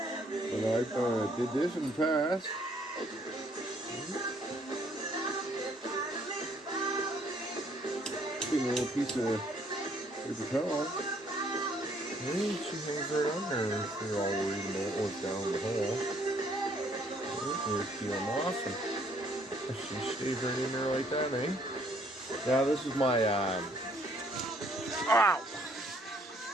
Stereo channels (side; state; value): both; normal; correlation 0.64